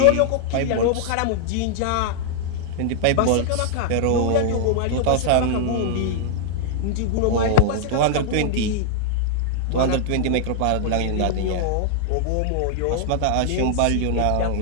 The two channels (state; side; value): different; both; correlation -0.01